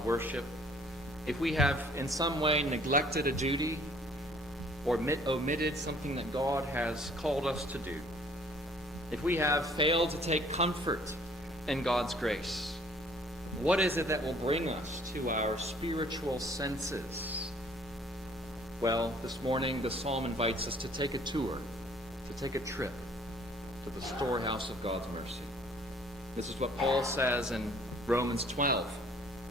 worship, if we have in some way neglected a duty or omitted something that God has called us to do, if we have failed to take comfort in God's grace, what is it that will bring us to our spiritual senses? Well, this morning the psalm invites us to take a tour, to take a trip to the storehouse of God's mercy. This is what Paul says in Romans 12.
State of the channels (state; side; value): normal; both; correlation 0.57